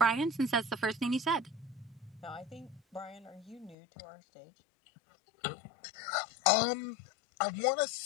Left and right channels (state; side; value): drops out; right; at 3.8 s